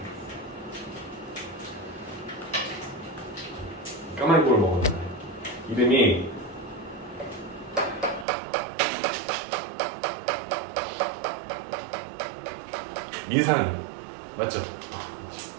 까마귀 꿀을 먹었잖아요. 이름이 민상이 맞죠?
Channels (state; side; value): drops out; left; at 8.2 s